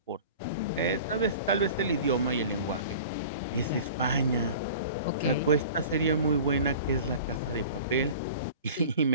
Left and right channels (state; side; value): inverted; both; correlation -0.40